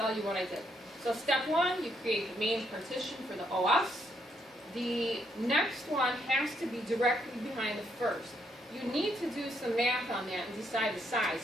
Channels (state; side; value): normal; both; correlation 0.74